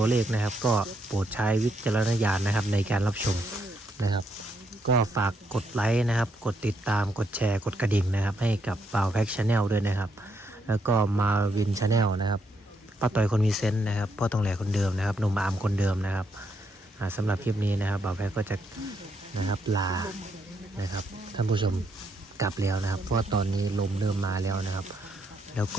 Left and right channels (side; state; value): both; normal; correlation 0.76